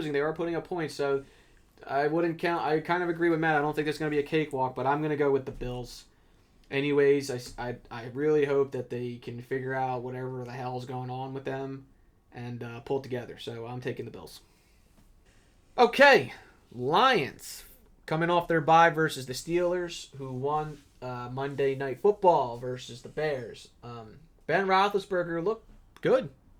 they are putting up points. So I wouldn't count. I kind of agree with Matt. I don't think there's going to be a cakewalk, but I'm going to go with the Bills. Anyways, I really hope that they can figure out whatever the hell's going on with them and pull it together. So I'm taking the Bills. Okay, Lions coming off their bye versus the Steelers, who won Monday Night Football versus the Bears. Ben Roethlisberger looked good.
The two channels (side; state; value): both; identical; correlation 1.00